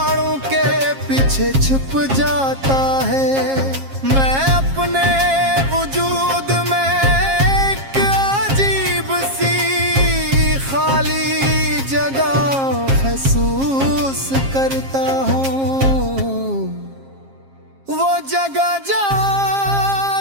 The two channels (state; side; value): late; left; 7.4 ms